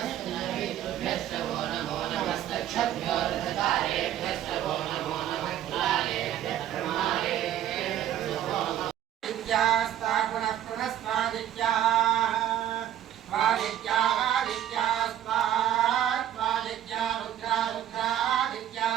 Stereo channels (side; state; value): left; quieter; 11.5 dB